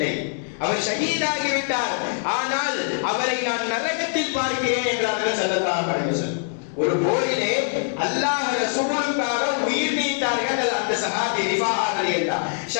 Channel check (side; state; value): right; silent; 63 dB below the other